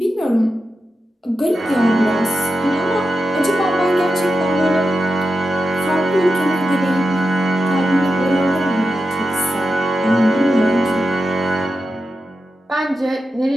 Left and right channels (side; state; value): both; normal; correlation 0.90